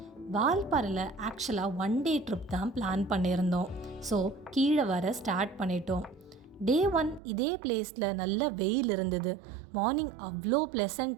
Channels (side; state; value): left; drops out; at 7.2 s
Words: வால்பாறையில் ஆக்சுவலாக 1 டே ட்ரிப் தான் பிளான் பண்ணியிருந்தோம். ஸோ கீழே வர ஸ்டார்ட் பண்ணிட்டோம். டே 1 இதே பிளேஸில் நல்ல வெயில் இருந்தது. மார்னிங் அவ்வளோ